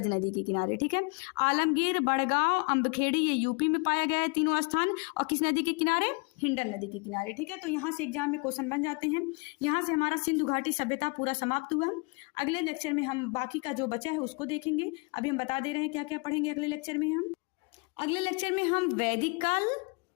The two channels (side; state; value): right; quieter; 31.2 dB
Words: नदी के किनारे, ठीक है। आलमगीर, बड़गांव, अम्बखेड़ी ये यूपी में पाया गया है तीनों स्थान, और किस नदी के किनारे, हिंडन नदी के किनारे, ठीक है। तो यहाँ से एग्जाम में क्वेश्चन बन जाते हैं। यहाँ से हमारा सिंधु घाटी सभ्यता पूरा समाप्त हुआ। अगले लेक्चर में हम बाकी का जो बचा है उसको देखेंगे। अभी हम बता दे रहे हैं क्या क्या पढ़ेंगे अगले लेक्चर में। हम अगले लेक्चर में हम वैदिक काल,